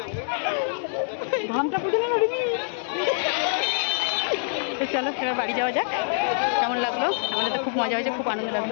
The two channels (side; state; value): right; silent; digital silence